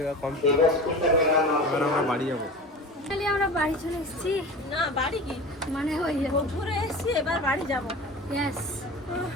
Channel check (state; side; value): normal; both; correlation 0.33